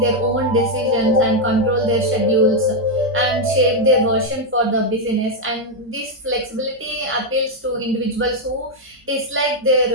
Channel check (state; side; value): normal; both; correlation 0.01